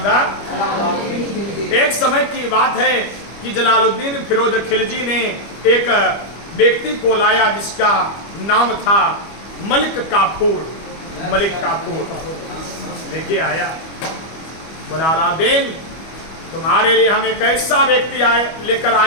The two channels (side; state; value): right; late; 25 ms